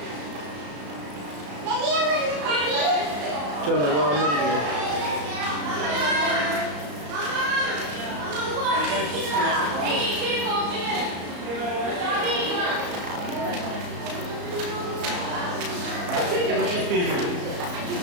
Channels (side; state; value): left; late; 34 ms